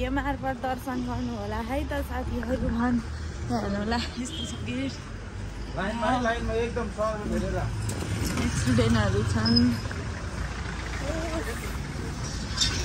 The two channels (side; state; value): both; identical; correlation 1.00